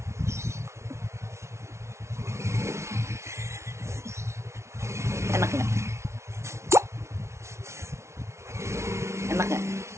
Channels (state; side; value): late; left; 0.13 ms